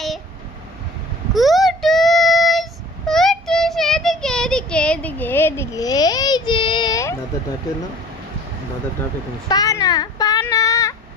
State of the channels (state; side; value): normal; both; correlation 0.45